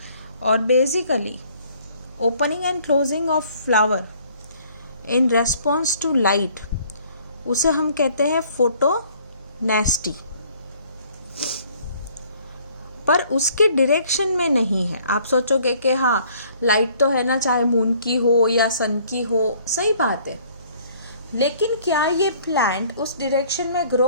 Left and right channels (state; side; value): inverted; both; correlation -0.58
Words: और basically opening and closing of flower in response to light, उसे हम कहते हैं फोटोनेस्टी. पर उसके डायरेक्शन में नहीं है. आप सोचोगे कि हाँ लाइट तो है ना, चाहे मून की हो या सन की हो, सही बात है, लेकिन क्या ये प्लांट उस डायरेक्शन में